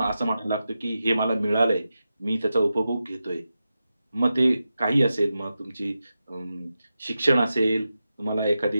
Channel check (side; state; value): both; inverted; correlation -0.91